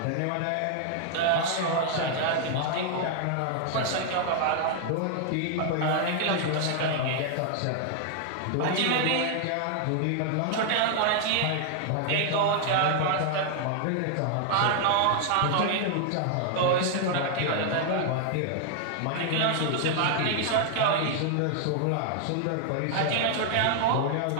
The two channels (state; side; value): different; both; correlation 0.00